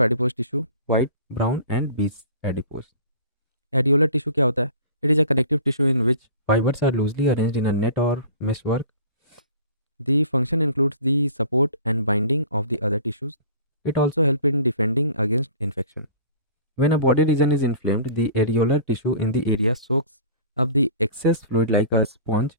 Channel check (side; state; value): both; inverted; correlation -0.43